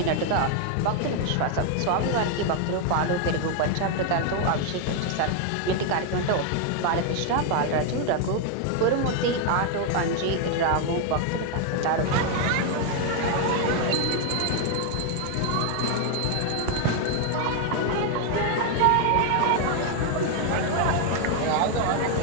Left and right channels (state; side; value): different; both; correlation 0.01